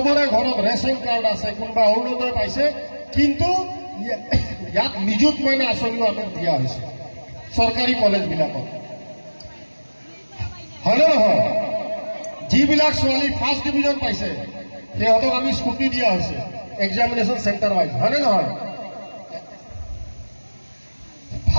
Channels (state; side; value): inverted; both; correlation -1.00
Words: ঘরত রেশন কার্ড আছে, কোনোবা অৰুণোদয় পাইছে। কিন্তু ইয়াত নিযুত মইনা আঁচনিও আমাক দিয়া হৈছে চৰকাৰী কলেজবিলাকত, হয় নে নহয়? যিবিলাক ছোৱালী ফাৰ্ষ্ট ডিভিজন পাইছে সিহঁতক আমি স্কুটি দিয়া হৈছে এক্সামিনেশ্যন চেণ্টাৰ ৱাইজ, হয় নে নহয়?